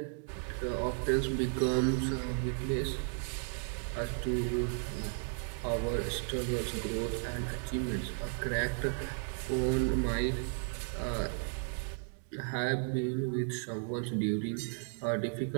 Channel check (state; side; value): silent; left; 55 dB below the other